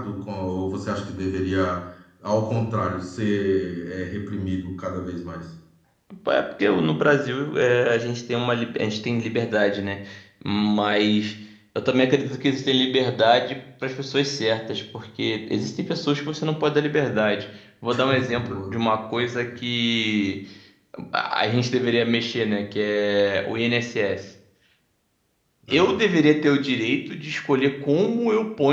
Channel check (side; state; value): both; identical; correlation 1.00